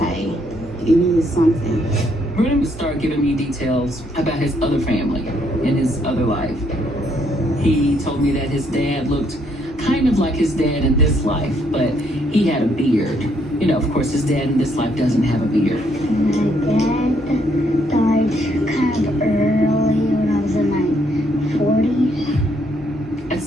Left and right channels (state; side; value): normal; both; correlation 0.71